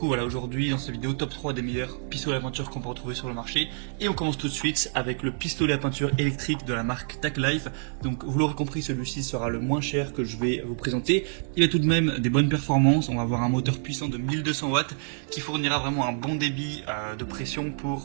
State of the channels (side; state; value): left; silent; 60 dB below the other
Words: voilà, aujourd'hui dans cette vidéo, top 3 des meilleurs pistolets à peinture qu'on peut retrouver sur le marché. Et on commence tout de suite avec le pistolet à peinture électrique de la marque TechLife. Donc vous l'aurez compris, celui-ci sera le moins cher que je vais vous présenter. Il a tout de même des bonnes performances, on va avoir un moteur puissant de 1200 watts qui fournira vraiment un bon débit de pression